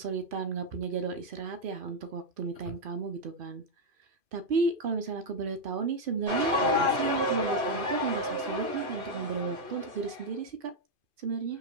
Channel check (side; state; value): left; late; 2.5 ms